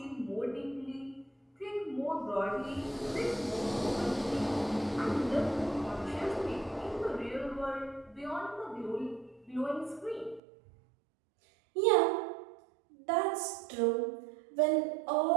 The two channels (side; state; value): left; drops out; at 10.4 s